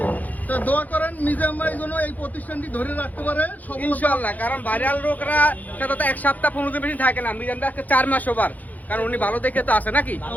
তো দোয়া করেন মিজান ভাই যেন এই প্রতিষ্ঠানটি ধরে রাখতে পারে সফলতা। ইনশাআল্লাহ, কারণ ভাইরাল লোকরা সাথে তো এক সপ্তাহ 15 দিন বেশি থাকে না, মিজান ভাই আজকে 4 মাস ওভার, কারণ উনি ভালো দেখে তো আসে নাকি।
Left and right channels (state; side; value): late; right; 0.080 ms